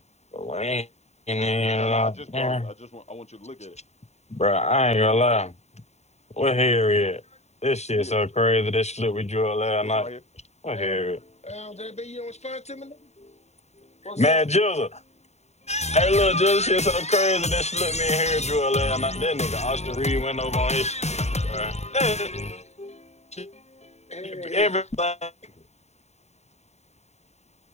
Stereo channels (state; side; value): late; right; 0.32 ms